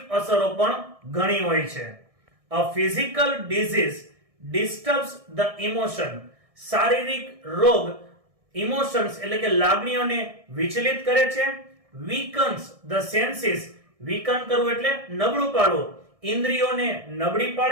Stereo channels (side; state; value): left; late; 1.6 ms